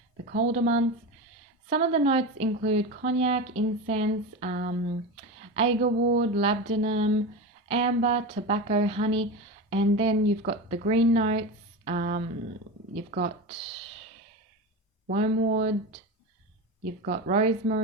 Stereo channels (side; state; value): both; normal; correlation 0.23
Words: the colder months. Some of the notes include cognac, incense, agarwood, labdanum, amber, tobacco, honey, and then you've got the green notes. You've got wormwood, you've got